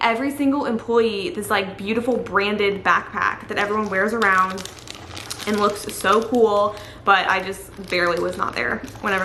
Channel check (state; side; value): identical; both; correlation 1.00